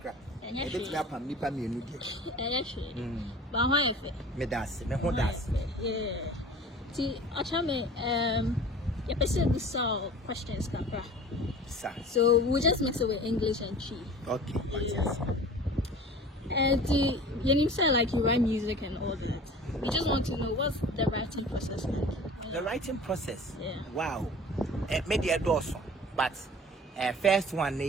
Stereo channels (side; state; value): both; normal; correlation 0.42